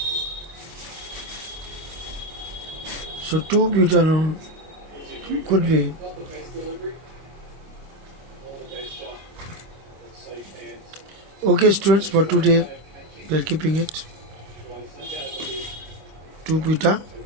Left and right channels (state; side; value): late; left; 25 ms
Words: So 2 butanone could be. Okay students, for today we are keeping it 2